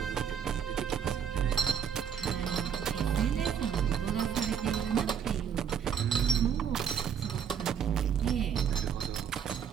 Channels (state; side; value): quieter; left; 8.0 dB